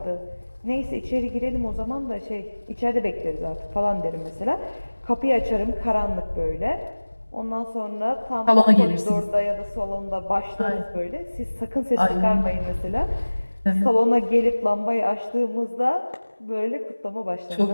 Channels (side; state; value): both; inverted; correlation -1.00